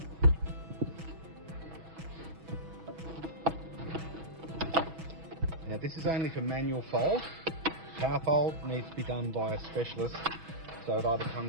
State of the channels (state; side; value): late; left; 6.2 ms